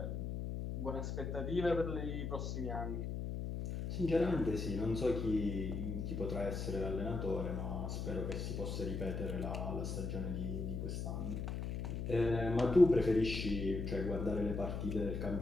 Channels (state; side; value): noise; left; hum, 3 dB below the sound